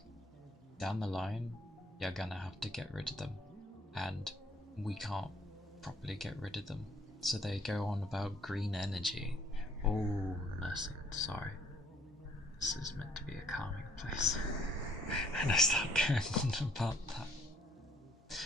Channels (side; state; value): both; normal; correlation 0.63